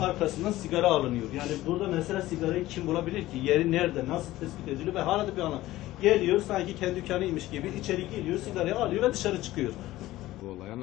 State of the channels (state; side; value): quieter; right; 16.3 dB